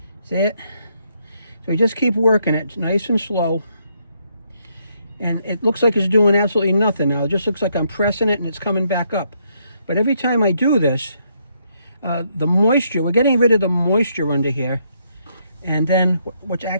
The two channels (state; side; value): inverted; both; correlation -0.74